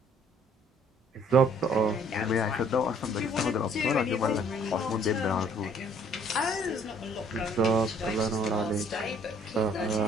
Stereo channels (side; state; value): both; normal; correlation 0.60